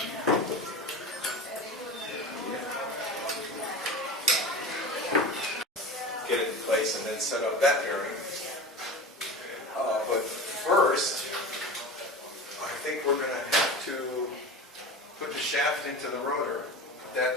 Get it in place and then set up that bearing. But first, I think we're going to have to put the shaft into the rotor. Put that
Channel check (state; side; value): normal; both; correlation 0.31